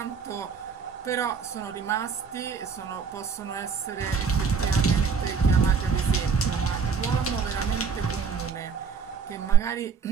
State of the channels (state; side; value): quieter; left; 5.8 dB